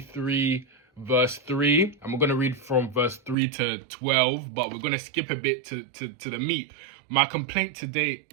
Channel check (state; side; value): drops out; left; at 3.4 s